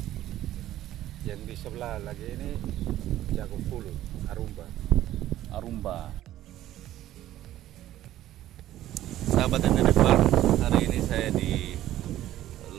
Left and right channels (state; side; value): quieter; left; 13.5 dB